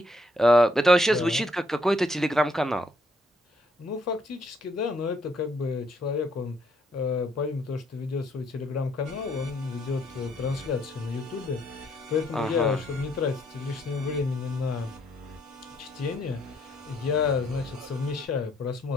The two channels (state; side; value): normal; both; correlation 0.70